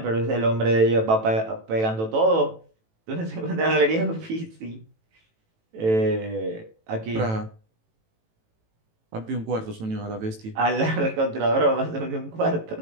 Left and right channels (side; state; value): left; late; 18 ms